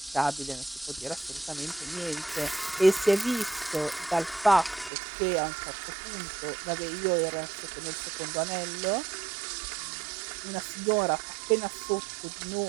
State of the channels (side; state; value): left; drops out; at 4.9 s